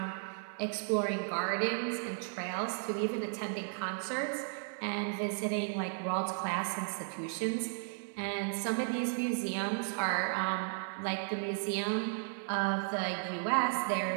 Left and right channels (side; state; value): left; silent; 55 dB below the other